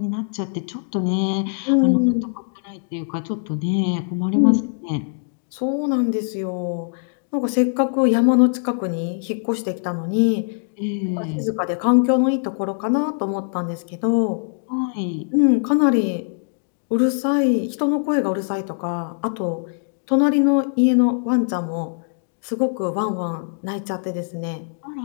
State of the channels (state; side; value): silent; right; digital silence